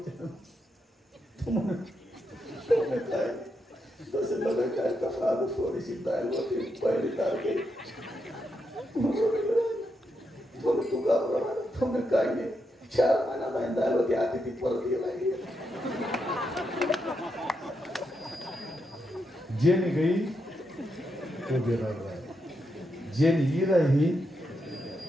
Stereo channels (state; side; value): normal; both; correlation 0.83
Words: तसे लगे काय कसा थोडीशी दाल होती पहिली तारखे तू घाबरला तुम्ही काय नाही 4 महिना नाही दाल होती आधी ती परत गेला जेनी गई तो बेरा रहा जेनी ही रही